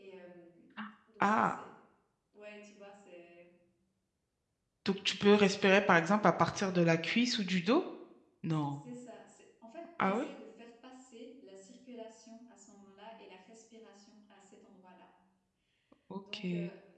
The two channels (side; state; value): both; identical; correlation 1.00